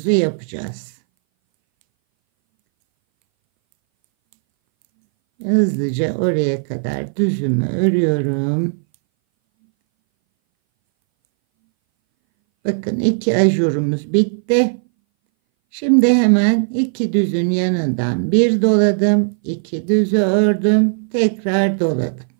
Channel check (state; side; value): silent; left; 62 dB below the other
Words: yapacağız. Hızlıca oraya kadar düzümü örüyorum. Bakın 2 ajurumuz bitti. Şimdi hemen 2 düzün yanından bir doladım. 2 düzü ördüm. Tekrar doladım.